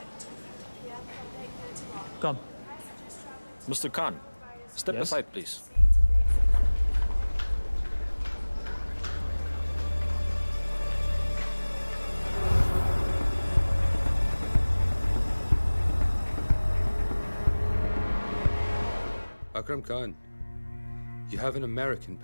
Come. Mr. Khan, step aside, please. Akram Khan, you have an American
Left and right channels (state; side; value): inverted; both; correlation -1.00